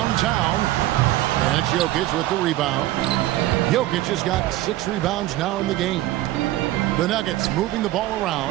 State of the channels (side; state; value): left; quieter; 15.8 dB